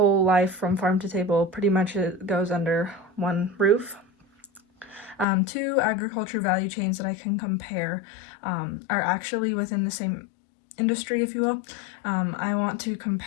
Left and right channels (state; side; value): drops out; right; at 5.2 s